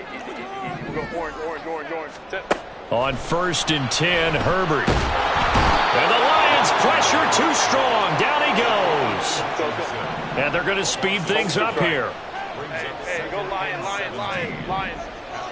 easy. We'll go orange. Sit. On 1st and 10, Herbert. And the Lions pressure too strong. Down he goes. And they're going to speed things up here. Hey, go Lions.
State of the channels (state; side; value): identical; both; correlation 1.00